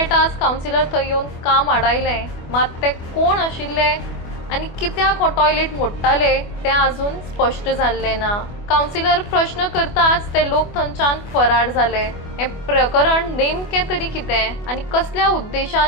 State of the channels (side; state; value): right; late; 24 ms